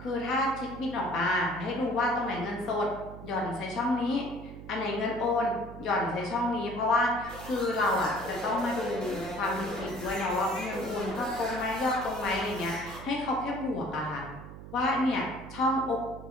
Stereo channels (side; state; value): right; noise; hum, 13 dB below the sound